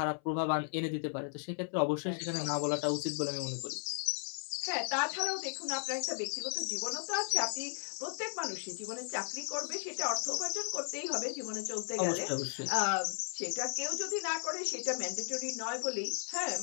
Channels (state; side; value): silent; right; 54 dB below the other